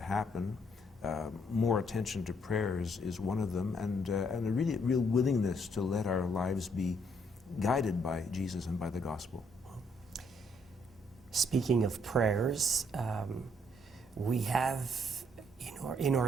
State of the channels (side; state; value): both; normal; correlation 0.70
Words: happen. More attention to prayer is one of them, and a real willingness to let our lives be guided by Jesus and by the gospel. Speaking of prayers, we have, in our